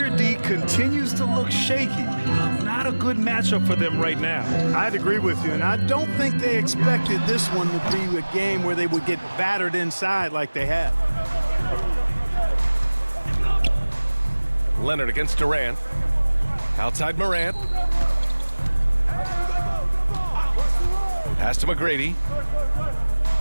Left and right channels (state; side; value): inverted; both; correlation -1.00